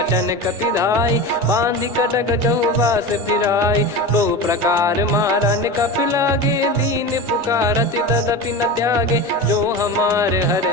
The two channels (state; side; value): normal; both; correlation 0.27